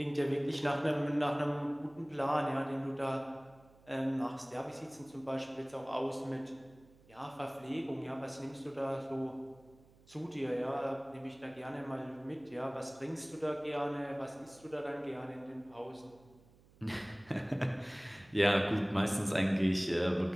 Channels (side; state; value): right; noise; hum, 27 dB below the sound